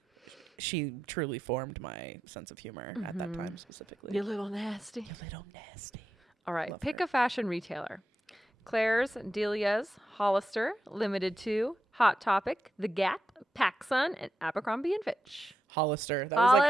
she truly formed my sense of humor at that time specifically. You little nasty. You little nasty. All right. Love Pick her. a fashion retailer. Claire's, Delia's, Hollister, Limited 2, Hot Topic, The Gap, PacSun, and Abercrombie & Fitch. Hollister. That was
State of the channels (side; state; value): both; normal; correlation 0.87